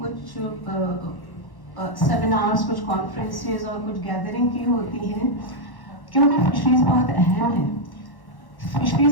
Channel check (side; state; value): right; late; 1.1 ms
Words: कुछ सेमिनार्स, कुछ कॉन्फ्रेंसेस और कुछ गैदरिंग की होती हैं, क्योंकि फिशरीज बहुत अहम है।